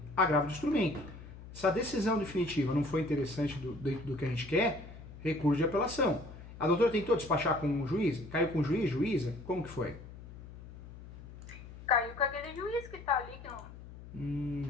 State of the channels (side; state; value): left; noise; hum, 15 dB below the sound